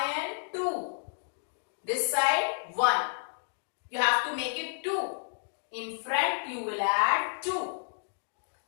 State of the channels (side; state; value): right; silent; digital silence